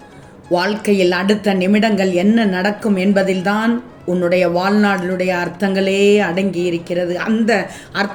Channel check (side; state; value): both; identical; correlation 1.00